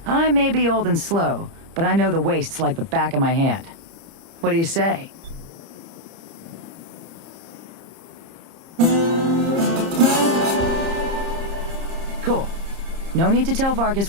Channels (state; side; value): late; left; 30 ms